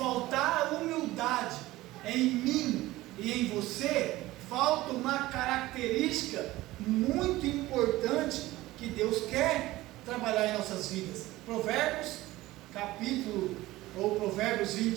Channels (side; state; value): left; quieter; 17.7 dB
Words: a humildade em mim e em você, falta uma característica muito importante que Deus quer trabalhar em nossas vidas. Provérbios, Provérbios